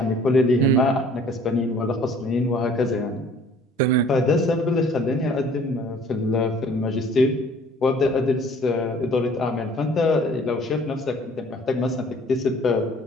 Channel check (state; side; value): normal; both; correlation 0.54